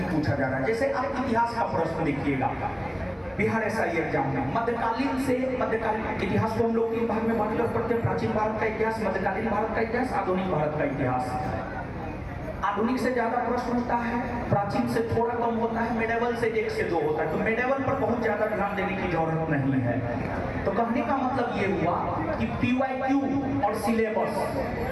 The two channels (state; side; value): identical; both; correlation 1.00